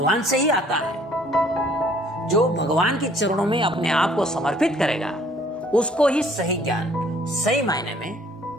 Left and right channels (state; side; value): normal; both; correlation 0.59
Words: से ही आता है, जो भगवान के चरणों में अपने आप को समर्पित करेगा उसको ही सही ज्ञान सही मायने में